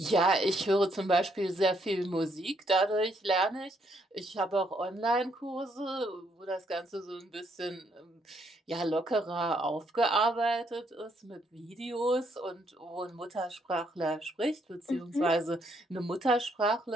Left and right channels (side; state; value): both; normal; correlation 0.72